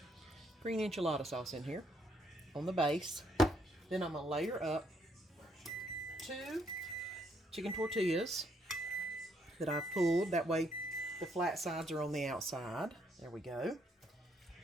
green enchilada sauce in here on the base. Then I'm going to layer up 2 chicken tortillas that I've pulled. That way the flat sides are on the outside. There we go.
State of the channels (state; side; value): normal; both; correlation 0.71